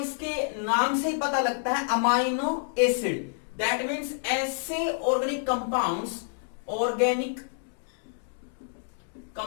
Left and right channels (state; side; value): silent; right; 59 dB below the other